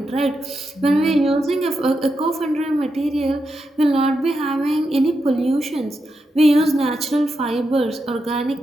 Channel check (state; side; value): normal; both; correlation 0.86